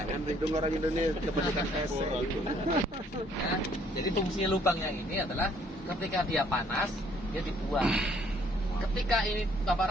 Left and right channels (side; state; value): both; normal; correlation 0.63